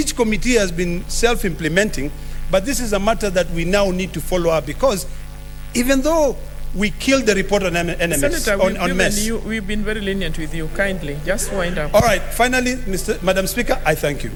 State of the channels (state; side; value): identical; both; correlation 1.00